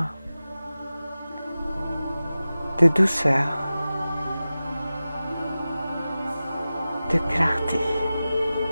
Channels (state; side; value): inverted; both; correlation -0.96